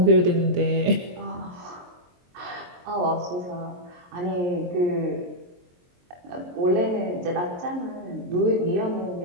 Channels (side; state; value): left; late; 23 ms